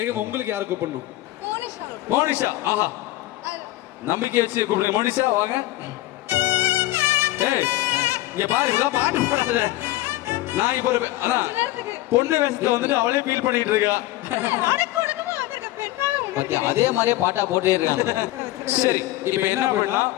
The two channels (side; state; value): right; quieter; 16.6 dB